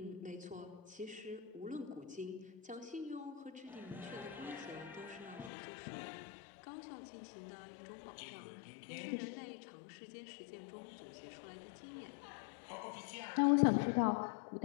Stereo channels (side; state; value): right; drops out; at 5.5 s